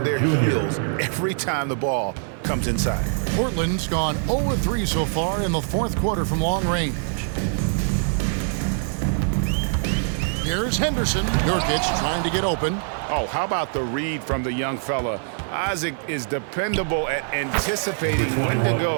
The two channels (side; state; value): left; silent; 63 dB below the other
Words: their heels every time the ball comes inside. Portland's gone 0 of 3 so far in the fourth quarter from long range. Here's Henderson. Nurkic trying to get open. Oh, how about the read from the young fella? Isaac is dependable at anticipating when to